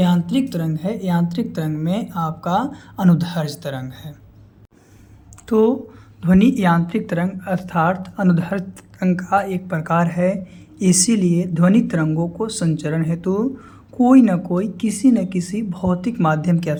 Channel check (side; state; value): both; identical; correlation 1.00